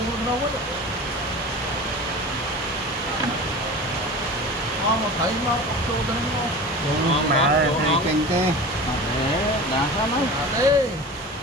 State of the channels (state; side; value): normal; both; correlation 0.34